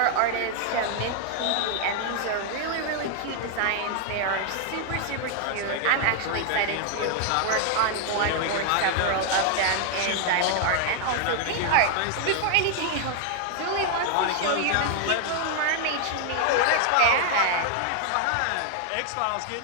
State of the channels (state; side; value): different; both; correlation 0.00